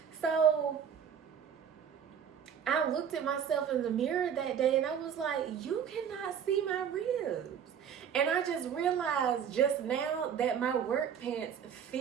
So I looked at myself in the mirror that day and I was like, you cannot see my ribs. And I just realized just now that my work pants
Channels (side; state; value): left; quieter; 8.2 dB